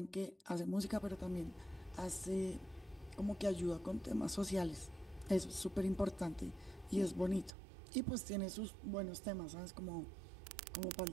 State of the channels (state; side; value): drops out; left; at 7.5 s